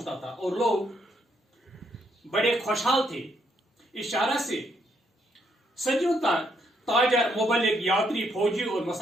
था और लोग बड़े खुशहाल थे। इस शाहरा से सदियों तक ताजर, मुबल्लिग, यात्री, फौजी और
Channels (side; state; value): both; normal; correlation 0.74